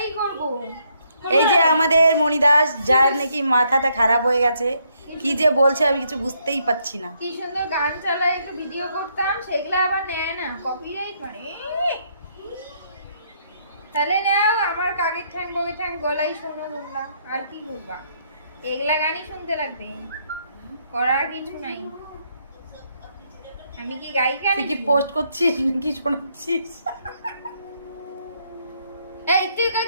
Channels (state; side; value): inverted; both; correlation -0.72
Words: করবো। এই যে আমাদের মণিদাস, যার নাকি মাথাটা খারাপ হয়ে গেছে, কি যে বলছে আমি কিছু বুঝতেই পাচ্ছি না। কি সুন্দর গান চালায়, একটু ভিডিও করতাম, সেগুলো আবার নেয় না, কপিরাইট মানে। তাহলে নাও আমার কাকের ঠ্যাং বগের ঠ্যাং গলাই শোনো বললাম, আর কি করবা, এগুলা গানই শুনতে লাগবে, করার কিছু নাই। আমি কি গায়িকা তুই কি নাকি? পোস্ট করছিস নাকি শোনাচ্ছিস? এই তুই